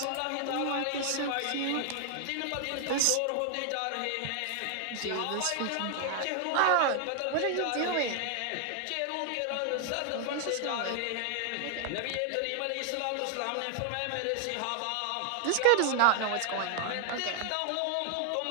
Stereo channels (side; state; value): both; different; correlation 0.00